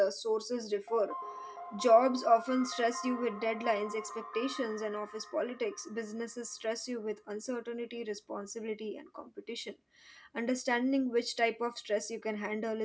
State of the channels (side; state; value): both; identical; correlation 1.00